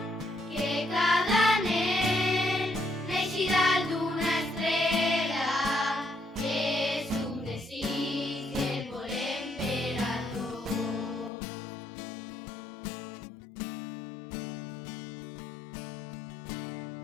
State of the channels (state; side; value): drops out; right; at 11.3 s